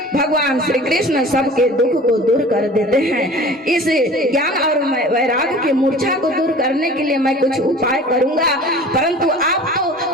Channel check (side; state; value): both; normal; correlation 0.42